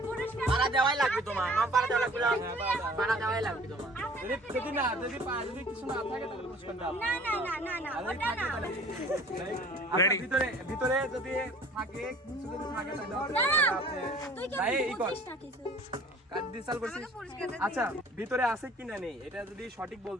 পুরস্কার পারা দেওয়াই লাগবে তোমার, না পারা দেওয়া লাগবে না, পারা দেওয়াই লাগবে তোমার। যদি কিছু না থাকে তাহলে পুরস্কার দাও। না না না না না ওটা না Ready? ভিতরে যদি থাকে কিছু যদি থাকে তাহলে না, আপনি তুই কি ভাই এই কর বুঝিস না কিছু কার্ড ডিসাল করছিস। আচ্ছা ভিতরে আছে কিনা নেই এটা যদি সঠিক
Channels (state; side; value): normal; both; correlation 0.49